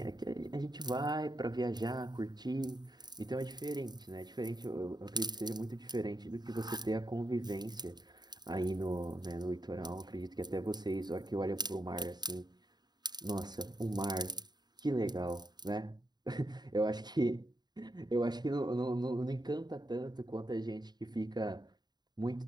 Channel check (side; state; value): left; late; 0.20 ms